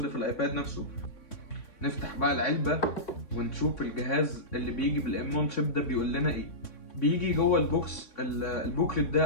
في الايباد نفسه. نفتح بقى العلبه ونشوف الجهاز اللي بيجي بالام 1 شيب ده بيقول لنا ايه. بيجي جوه البوكس البوكلت ده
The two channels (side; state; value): right; late; 3.6 ms